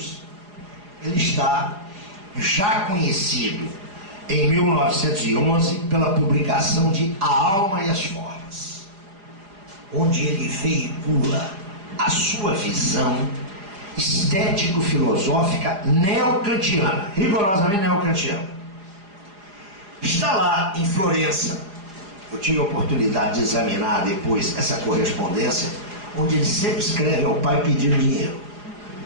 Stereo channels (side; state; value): left; late; 4.9 ms